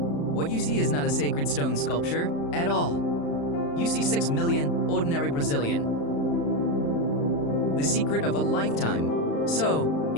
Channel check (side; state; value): right; late; 35 ms